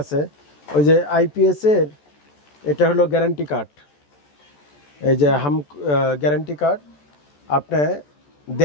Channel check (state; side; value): late; right; 14 ms